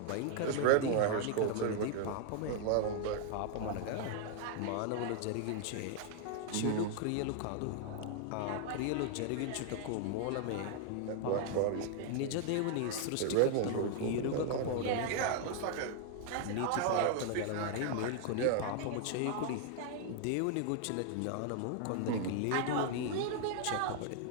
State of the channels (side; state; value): both; different; correlation 0.00